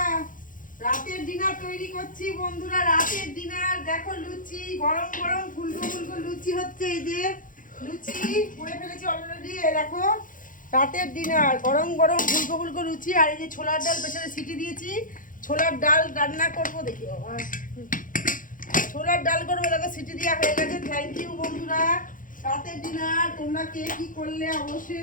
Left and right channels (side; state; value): right; late; 0.39 ms